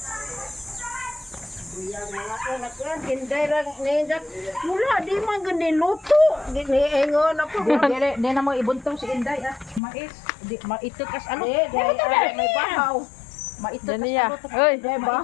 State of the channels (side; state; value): right; drops out; at 9.8 s